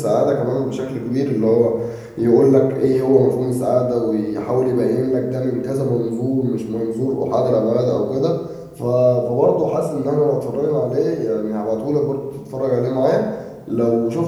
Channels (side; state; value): both; identical; correlation 1.00